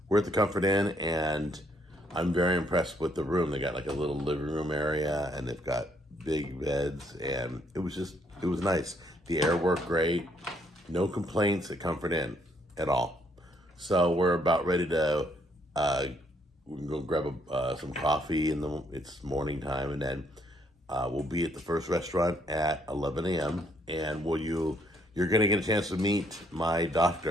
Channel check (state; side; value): normal; both; correlation 0.69